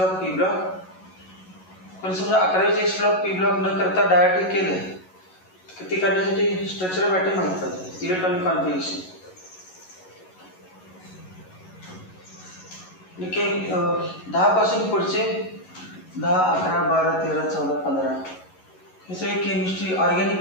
पी ब्लॉक. पण समजा 11वीचे एस ब्लॉक, पी ब्लॉक न करता डायरेक्ट केलं, ते करण्यासाठी स्ट्रक्चर ऑफ ॲटम माहीत पाहिजे, इलेक्ट्रॉनिक कॉन्फिगरेशन. 10 पासून पुढचे 10, 11, 12, 13, 14, 15 हे सगळे केमिस्ट्री, ऑर्गॅनिक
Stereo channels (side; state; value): right; late; 11 ms